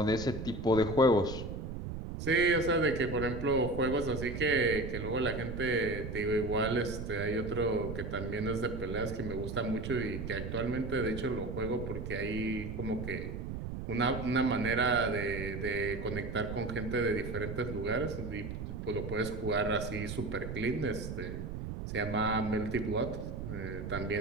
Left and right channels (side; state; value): right; noise; rumble, 6 dB below the sound